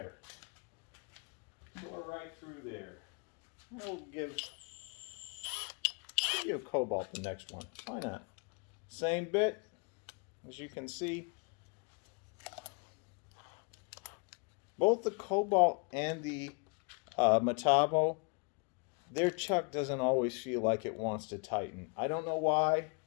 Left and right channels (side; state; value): right; quieter; 34.5 dB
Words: Tore right through there. We'll give Cobalt the next one. Why not? Same bit. As you can see, both the Cobalt and the Metabo, their chuck doesn't always feel like it wants to tighten. I don't know why.